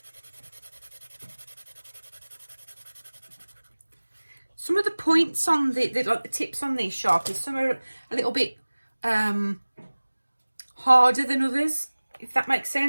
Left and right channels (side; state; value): both; inverted; correlation -1.00